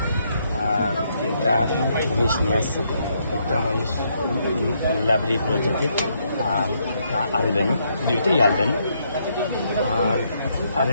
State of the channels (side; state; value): both; inverted; correlation -0.74